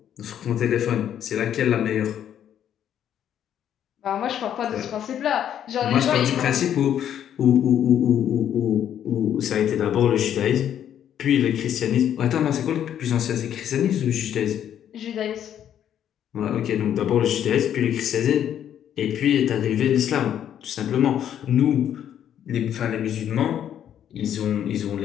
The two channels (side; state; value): right; quieter; 9.9 dB